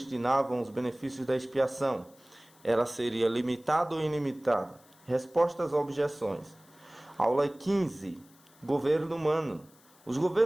os benefícios da expiação? Ela seria limitada ou ilimitada? Respostas a objeções. Aula 15. Governo humano. Os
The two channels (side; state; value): left; noise; hiss, 28 dB below the sound